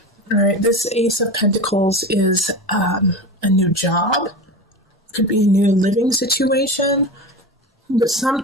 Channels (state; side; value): normal; both; correlation 0.27